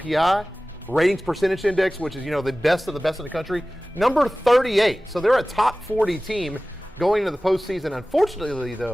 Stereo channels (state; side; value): normal; both; correlation 0.97